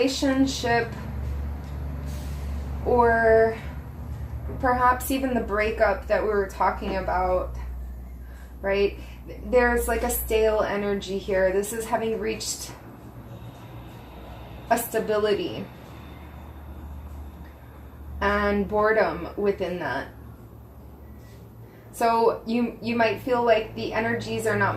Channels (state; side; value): identical; both; correlation 1.00